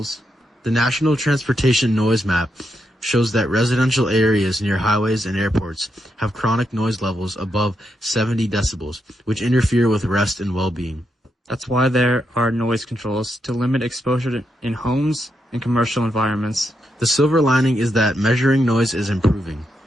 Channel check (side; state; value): both; normal; correlation 0.82